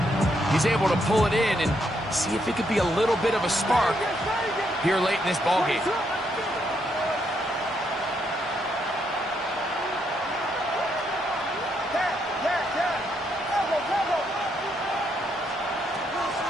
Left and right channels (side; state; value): both; normal; correlation 0.76